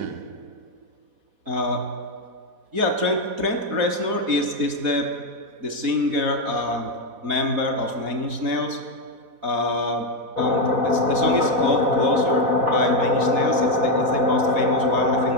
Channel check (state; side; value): late; left; 4.1 ms